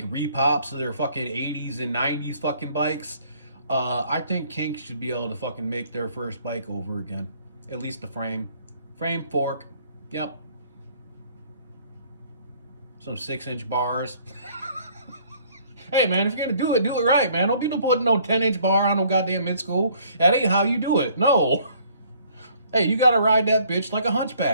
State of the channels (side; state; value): both; inverted; correlation -0.60